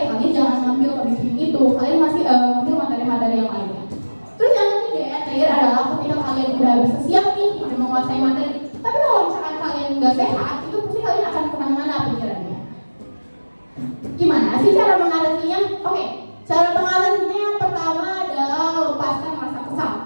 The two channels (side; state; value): both; inverted; correlation -1.00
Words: kalian jangan ngambil public speaking itu. Kalian masih ngambil materi-materi yang lainnya. Terus yang ketiga ya terakhir adalah ketika kalian udah bisa siap nih udah menguasai materi. Tapi kalau misalkan kalian nggak sehat, itu pasti kalian akan kemana-mana pikirannya. Gimana sih cara mengatasinya? Oke, cara mengatasinya yang pertama adalah lepaskan rasa kesal.